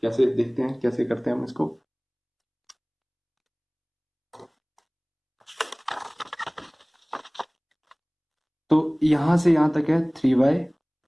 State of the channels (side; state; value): both; identical; correlation 1.00